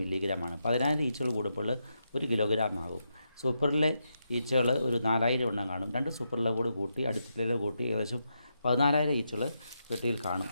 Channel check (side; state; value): both; inverted; correlation -0.84